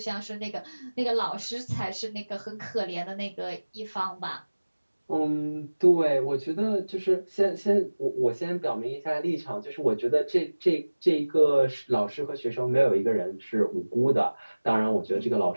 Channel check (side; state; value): both; inverted; correlation -1.00